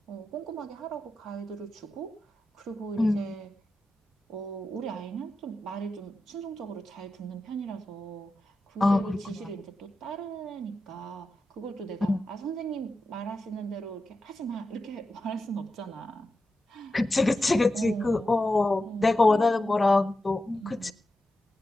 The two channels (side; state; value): both; normal; correlation 0.91